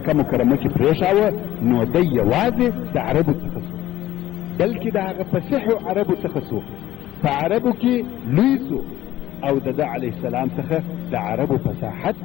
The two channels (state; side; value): quieter; right; 14.0 dB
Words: مکرمه کې پرېښاوه نو دی یوازې د عربو څخه سو، بلکې د هغه فصیحو عربو څخه سو، په عربو کې لوی سو او د ده علیه السلام څخه د عربو فصاحت